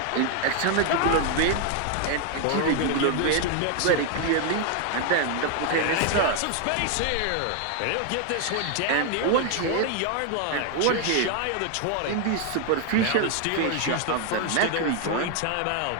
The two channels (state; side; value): different; both; correlation 0.00